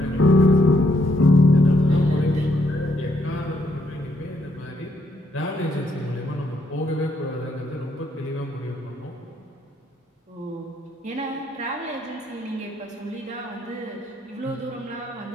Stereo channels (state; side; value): normal; both; correlation 0.73